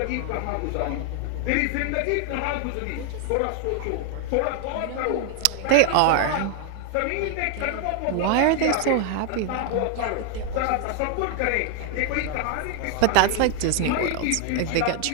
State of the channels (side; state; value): both; different; correlation 0.00